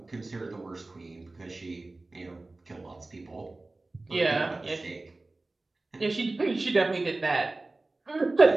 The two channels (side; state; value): left; quieter; 3.1 dB